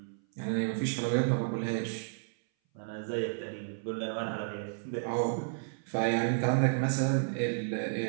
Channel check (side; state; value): left; silent; 56 dB below the other